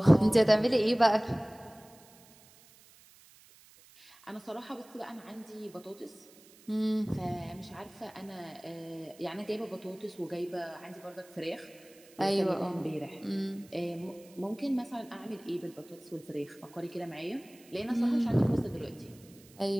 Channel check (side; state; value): right; noise; hiss, 25 dB below the sound